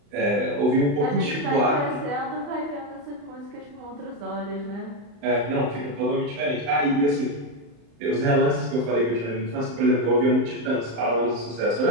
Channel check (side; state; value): left; late; 35 ms